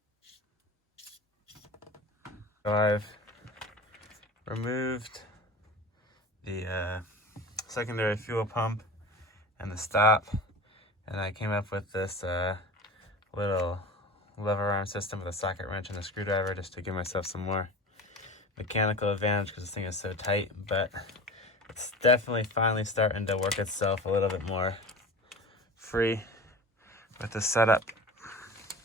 So I've removed the secondary fuel pump and the stop, and I came up with this little lever arm system with a socket wrench and a screwdriver just to give myself some more mechanical advantage because this thing is so tight, but it's definitely finally starting to work itself a little bit more free with the setup.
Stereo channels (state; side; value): normal; both; correlation 0.35